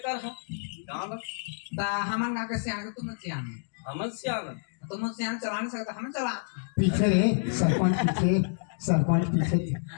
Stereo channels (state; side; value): silent; right; digital silence